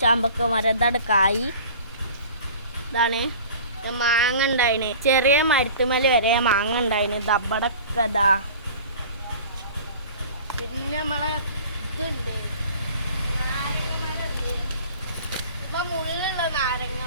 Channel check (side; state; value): both; inverted; correlation -0.43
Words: ചാമ്പക്ക മരം. ഇതാണ് കായ്. ഇതാണ് മാങ്ങ ഉണ്ടായിന്, ചെറിയ മരത്തുമല വരെ മാങ്ങ ഉണ്ടായിന്. ദബടൊക്കെ പിന്നെ നമ്മളെ ഇതുണ്ട്, നാരങ്ങമരമുണ്ട്. ഇപ്പൊ മുള്ളുള്ള